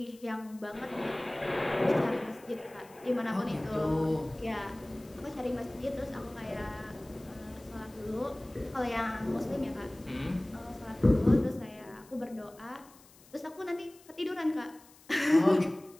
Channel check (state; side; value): noise; left; hiss, 25 dB below the sound